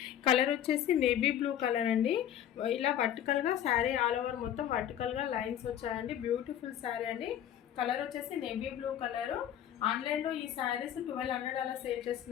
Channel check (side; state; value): right; quieter; 10.5 dB